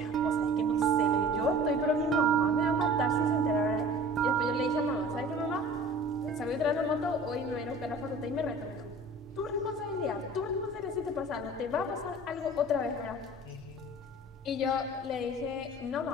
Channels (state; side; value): normal; both; correlation 0.43